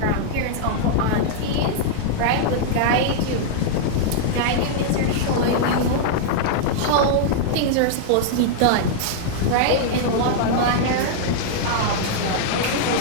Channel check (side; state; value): both; different; correlation -0.01